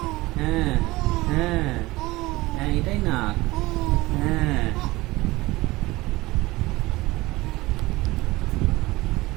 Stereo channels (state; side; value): quieter; left; 20.0 dB